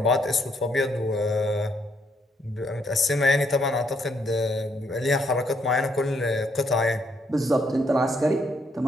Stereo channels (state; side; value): normal; both; correlation 0.73